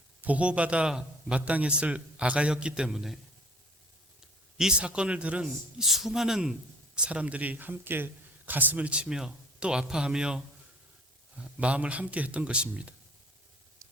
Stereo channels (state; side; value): normal; both; correlation 0.53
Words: 보호받아 마땅했을 아가였기 때문에 이 사건을 들은 수많은 사람들이 함께 가슴을 치며 또 아파하며 마음을 함께 했던 것입니다.